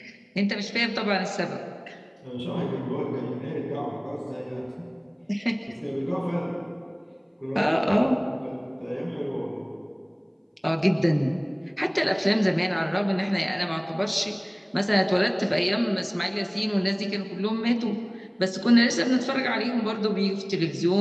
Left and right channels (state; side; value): identical; both; correlation 1.00